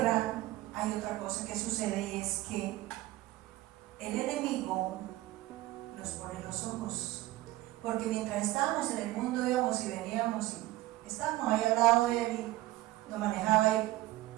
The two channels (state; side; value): quieter; left; 17.3 dB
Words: hay otra cosa que sucede, y es que el enemigo nos pone los ojos, porque mientras estábamos en el mundo íbamos y veníamos y estábamos ahí al lado de él y nos manejaba ahí